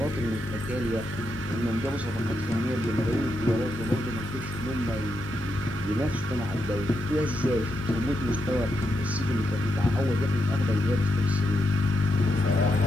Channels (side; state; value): both; normal; correlation 0.83